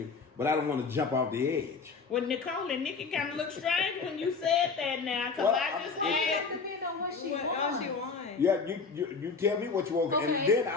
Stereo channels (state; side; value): quieter; right; 4.8 dB